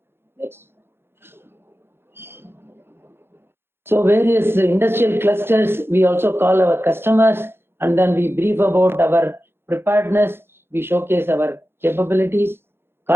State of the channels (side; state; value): left; late; 0.11 ms